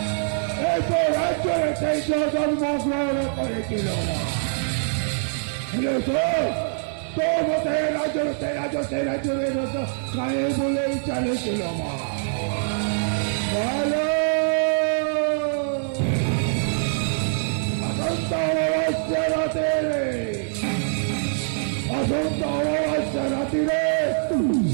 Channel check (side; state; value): left; silent; 63 dB below the other